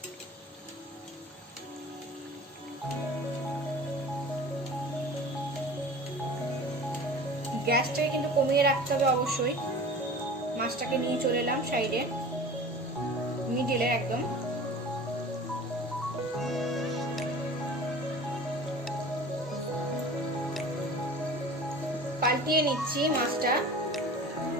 গ্যাসটাকে কিন্তু কমিয়ে রাখতে হবে অবশ্যই। মাছটাকে নিয়ে চলে এলাম সাইডে, মিডিলে একদম। পাল্টিয়ে নিচ্ছি মাছটা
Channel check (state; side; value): normal; both; correlation 0.40